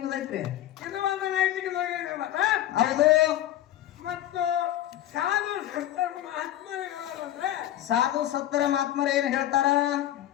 ಇದು ಒಂದು ನೈತಿಕ ಹೌದು ಮತ್ತು ಸಾಧು ಸತ್ತರ ಮಹಾತ್ಮರಿಗಳಂದ್ರೆ ಸಾಧು ಸತ್ತರ ಮಹಾತ್ಮರ ಏನ್ ಹೇಳ್ತಾರ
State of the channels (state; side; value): quieter; right; 12.9 dB